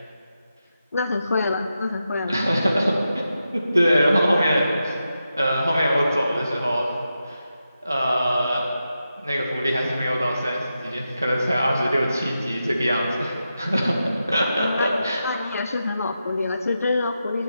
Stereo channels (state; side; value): inverted; both; correlation -0.88